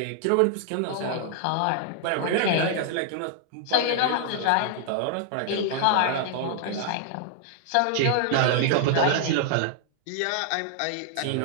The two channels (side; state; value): both; different; correlation -0.01